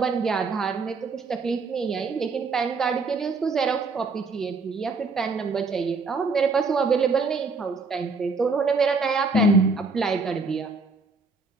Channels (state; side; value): quieter; left; 4.1 dB